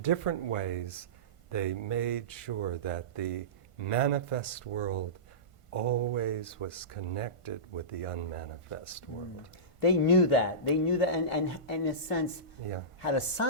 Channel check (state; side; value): late; right; 1.5 ms